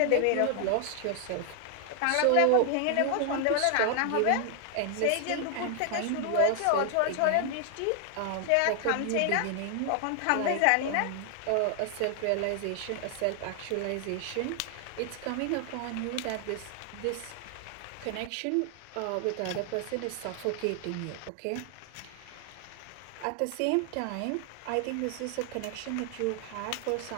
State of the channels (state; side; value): different; both; correlation 0.00